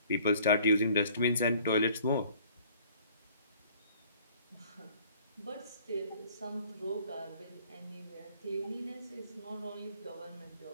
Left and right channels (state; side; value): inverted; both; correlation -0.55